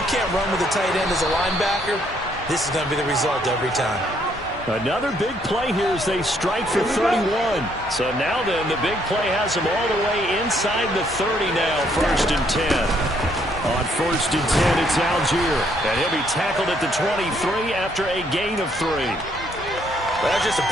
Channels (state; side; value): normal; both; correlation 0.69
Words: can't run with a tight end as a linebacker, this is going to be the result every time. Another big play here as they strike for 31. So now then, the big play has them all the way inside the 30 now, 1st and 10. On 1st and 10, it's Algier. And he'll be tackled at the 23 after a gain of 3. Well, that's just a